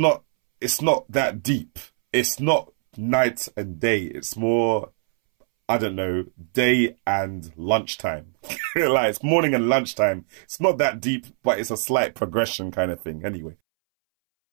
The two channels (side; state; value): left; silent; 63 dB below the other